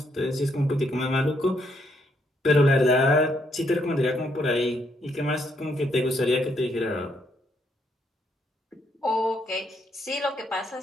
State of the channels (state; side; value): normal; both; correlation 0.74